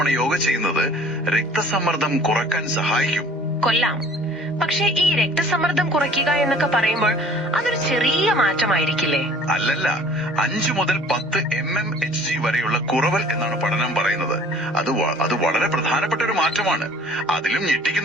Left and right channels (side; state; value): both; normal; correlation 0.51